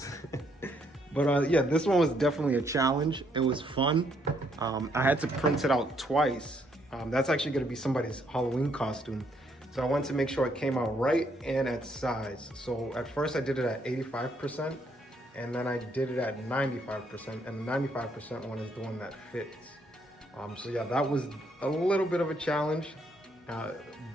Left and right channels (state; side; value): normal; both; correlation 0.71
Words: But yeah, this one was definitely a challenge. It was fun. I had to print it out twice. That's actually gonna be somebody's Halloween costume. So I wanted to make sure it came out right and at size. So at first I did it at 85%, and then I did it at 95%, and the 95% one is the one that fits. So yeah, that was a little bit of a challenge,